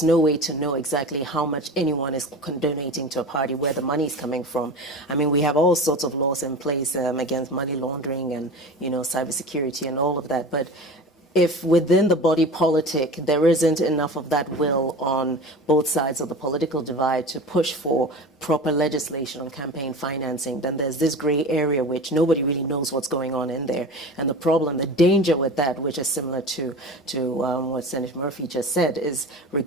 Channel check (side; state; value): both; normal; correlation 0.33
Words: no way to know exactly how much anyone is donating to a party, where the money is coming from. I mean, we have all sorts of laws in place against money laundering and, cybersecurity and all of that. But if within the body politic there isn't enough of that will on both sides of the political divide to push for proper legislation on campaign financing, then there's this gray area which nobody really knows what's going on in there. And the problem, the danger with that, which is similar to what Senator Murphy just said, is